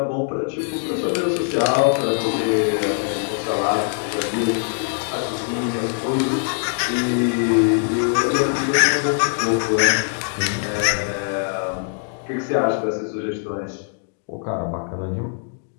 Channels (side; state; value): right; silent; digital silence